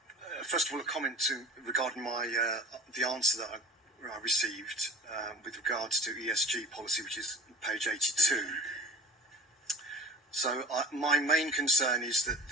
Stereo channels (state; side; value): normal; both; correlation 0.40